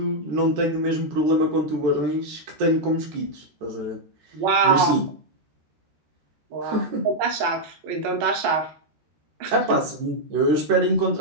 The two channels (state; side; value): late; left; 13 ms